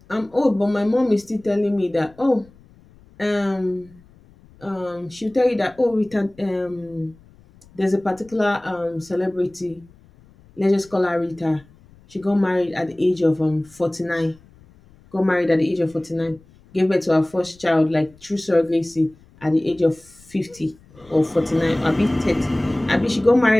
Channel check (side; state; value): left; noise; rumble, 27 dB below the sound